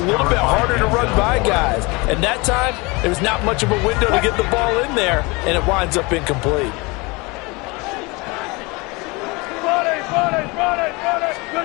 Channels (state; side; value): quieter; right; 26.1 dB